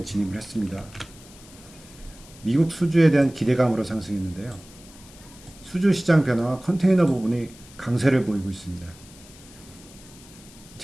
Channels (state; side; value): noise; left; hiss, 21 dB below the sound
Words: 진입을 했습니다. 미국 수주에 대한 기대감으로 상승했는데요. 수주 시장 변화와 컨테이너 부분이 강세를 보이고 있습니다.